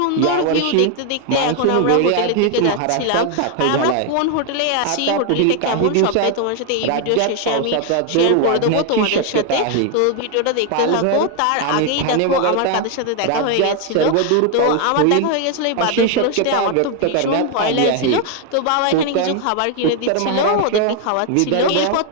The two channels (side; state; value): both; different; correlation 0.01